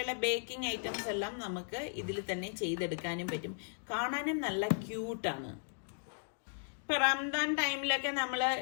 ബേക്കിംഗ് ഐറ്റംസ് എല്ലാം നമുക്ക് ഇതിൽ തന്നെ ചെയ്തെടുക്കാനും പറ്റും. കാണാനും നല്ല ക്യൂട്ടാണ്. ഇപ്പൊ റംദാൻ ടൈമിലൊക്കെ നമ്മൾ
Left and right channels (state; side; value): silent; right; digital silence